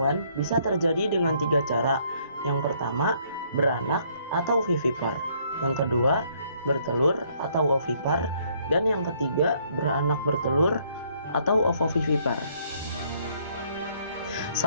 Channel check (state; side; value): inverted; both; correlation -0.66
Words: bisa terjadi dengan 3 cara. Yang pertama, beranak atau vivipar. Yang kedua, bertelur atau ovipar. Dan yang ketiga, beranak bertelur atau ovovivipar.